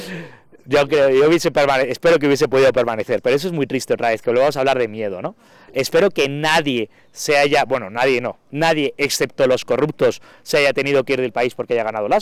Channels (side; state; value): both; identical; correlation 1.00